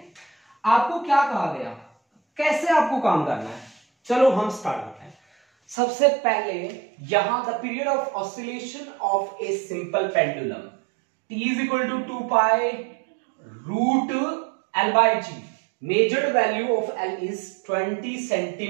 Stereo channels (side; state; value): left; drops out; at 5.8 s